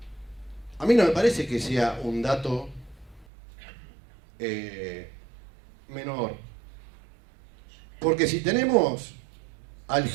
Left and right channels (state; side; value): drops out; left; at 3.2 s